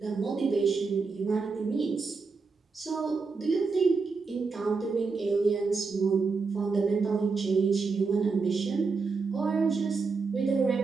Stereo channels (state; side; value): quieter; left; 4.5 dB